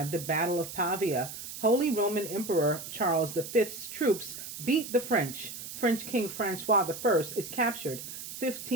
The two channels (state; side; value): noise; right; hiss, 10 dB below the sound